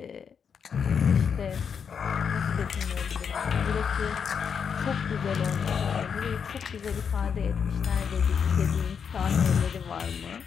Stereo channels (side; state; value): right; quieter; 6.9 dB